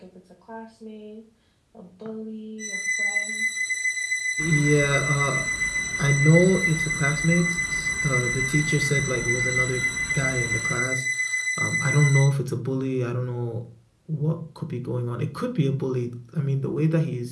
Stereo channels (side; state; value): both; identical; correlation 1.00